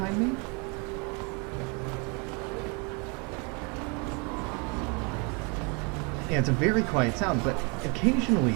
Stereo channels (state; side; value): quieter; left; 32.7 dB